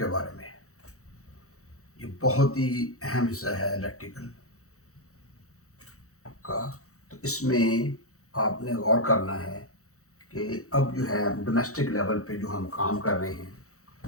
बारे में है। ये बहुत ही अहम हिस्सा है इलेक्ट्रिकल का। तो इसमें आपने गौर करना है कि अब जो है डोमेस्टिक लेवल पे जो हम काम कर रहे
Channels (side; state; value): right; late; 0.64 ms